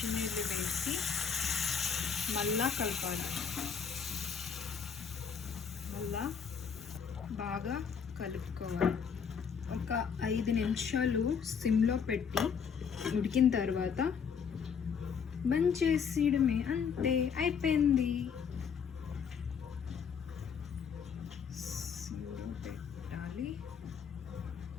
మళ్ళా కలపాలి. మళ్ళా బాగా కలుపుకోవాలి. ఒక 5 నిమిషాలు సిమ్లో పెట్టి ఉడికిన తర్వాత బంద్ చేసేయడమే, అంతే, అయిపోయింది. సిమ్లో పెట్టాలి.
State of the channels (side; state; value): right; quieter; 6.7 dB